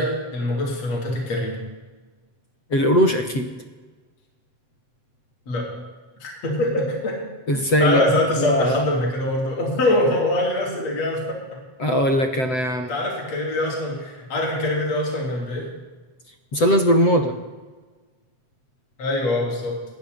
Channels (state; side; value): late; right; 7.8 ms